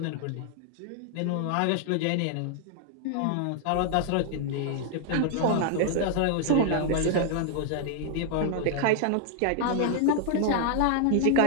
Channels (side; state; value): both; different; correlation 0.00